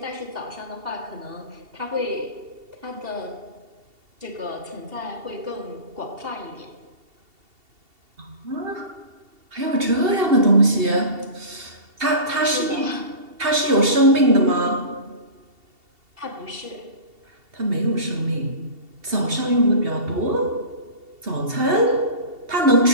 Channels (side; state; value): left; late; 2.7 ms